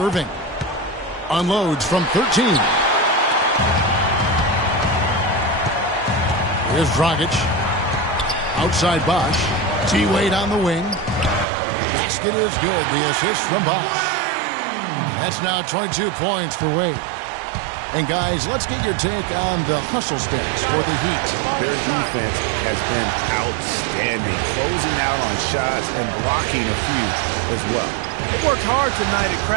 Unloads from 13. Here's Dragic. Outside Bosh. T-Wade on the wing. Basket is good. The assist from Bosh. That's now 22 points for Wade. And guys, let's get your take on the hustle stats for the Heat. Their defense has been outstanding, closing out on shots and blocking a few as well. They worked hard tonight at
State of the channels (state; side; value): drops out; left; at 11.5 s